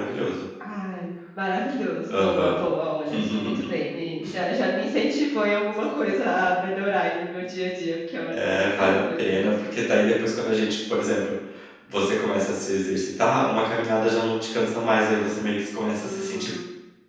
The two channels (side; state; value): both; identical; correlation 1.00